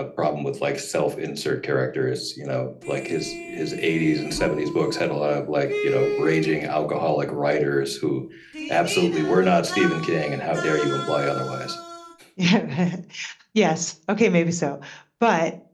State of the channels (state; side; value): identical; both; correlation 1.00